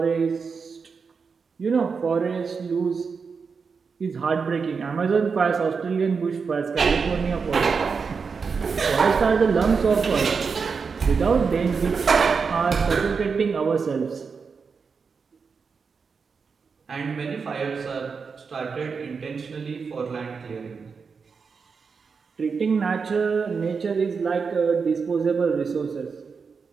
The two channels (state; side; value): quieter; left; 5.4 dB